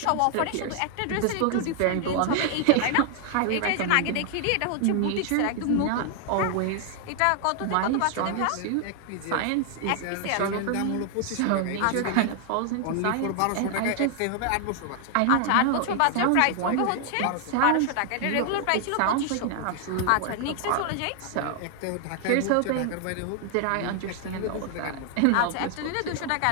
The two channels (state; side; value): different; both; correlation 0.00